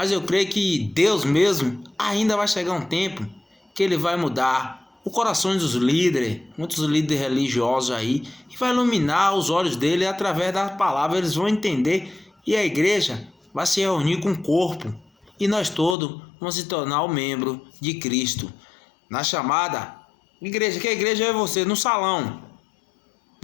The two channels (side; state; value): right; drops out; at 16.0 s